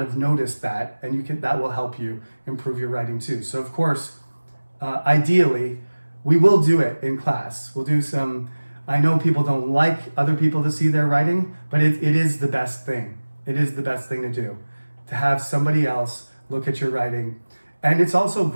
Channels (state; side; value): inverted; both; correlation -1.00